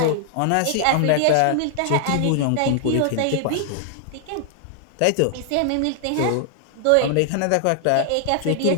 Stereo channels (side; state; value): both; different; correlation 0.00